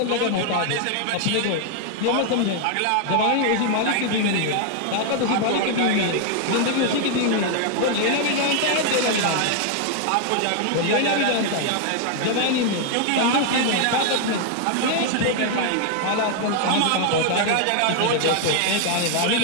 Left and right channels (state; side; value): different; both; correlation 0.00